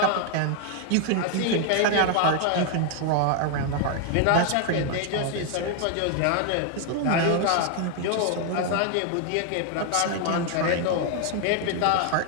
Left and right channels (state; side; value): different; both; correlation 0.00